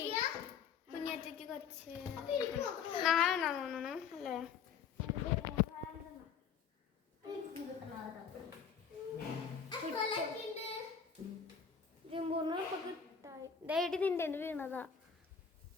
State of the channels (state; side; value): quieter; right; 6.8 dB